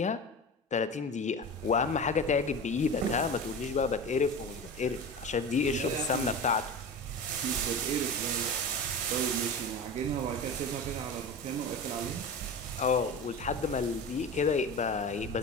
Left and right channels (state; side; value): normal; both; correlation 0.29